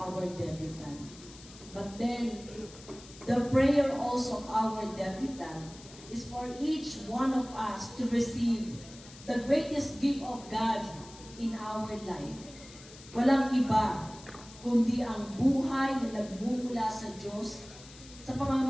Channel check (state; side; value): noise; left; hiss, 19 dB below the sound